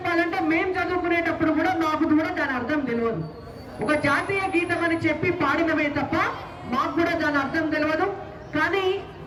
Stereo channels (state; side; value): identical; both; correlation 1.00